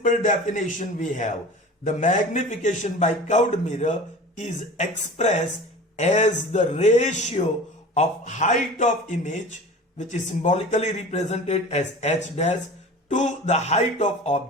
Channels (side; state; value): both; normal; correlation 0.38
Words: definition we have. The magnification by curved mirror is expressed as the ratio of height of image, which is symbolically represented as h dash, to the height of